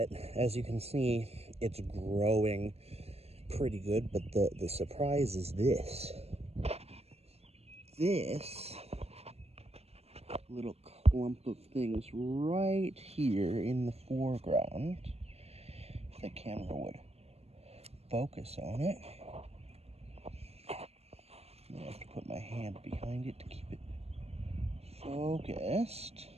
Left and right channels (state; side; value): late; left; 0.30 ms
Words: as you can see, it's growing pretty good. But the surprise is this. This little clump of things right here in the foreground, if the camera would focus on it. I have to put my hand behind it to keep it focused.